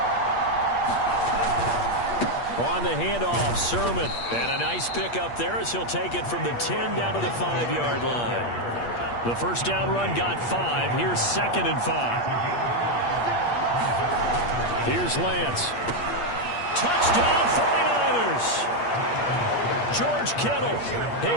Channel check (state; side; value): late; right; 8.5 ms